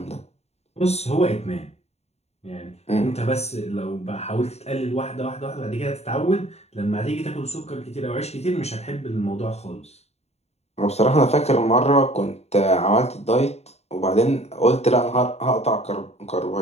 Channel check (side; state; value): right; late; 0.31 ms